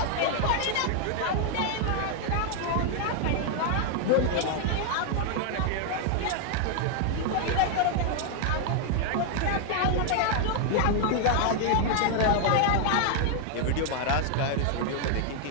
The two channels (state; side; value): different; both; correlation 0.00